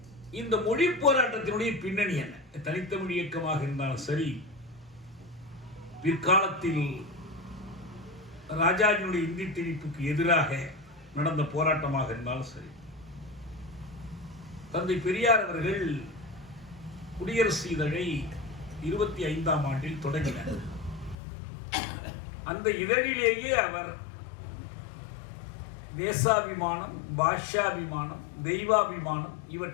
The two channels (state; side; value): drops out; right; at 21.2 s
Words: இந்த மொழி போராட்டத்தினுடைய பின்னணி என்ன? தனித்தமிழ் இயக்கமாக இருந்தாலும் சரி, பிற்காலத்தில் ராஜாஜினுடைய இந்தி திணிப்புக்கு எதிராக நடந்த போராட்டமாக இருந்தாலும் சரி, தந்தை பெரியார் அவர்கள் குடியரசு இதழை 25ஆம் ஆண்டில் தொடங்கினார். அந்த இதழிலேயே அவர் தேசாபிமானம், பாஷாபிமானம், தெய்வாபிமானம்